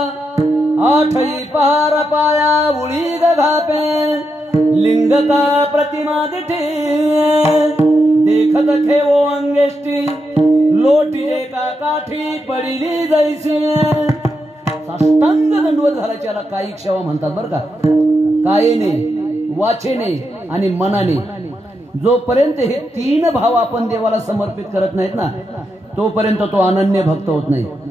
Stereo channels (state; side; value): normal; both; correlation 0.84